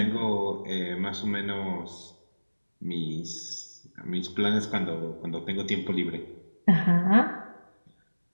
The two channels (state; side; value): inverted; both; correlation -1.00